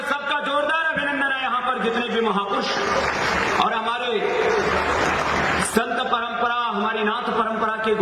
सबका जोरदार अभिनंदन है यहाँ पर जितने भी महापुरुष। और हमारे संत परंपरा, हमारी नाथ परंपरा के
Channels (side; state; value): both; identical; correlation 1.00